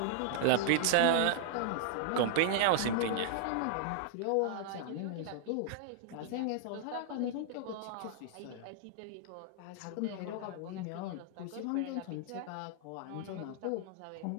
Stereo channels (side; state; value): both; different; correlation -0.01